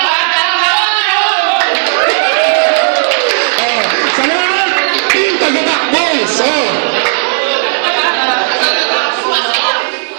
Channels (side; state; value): left; silent; 67 dB below the other